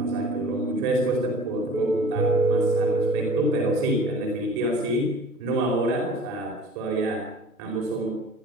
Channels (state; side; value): normal; both; correlation 0.45